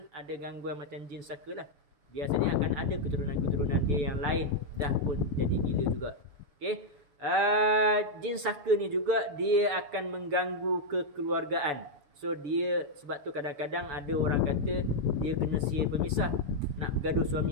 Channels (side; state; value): left; late; 7.0 ms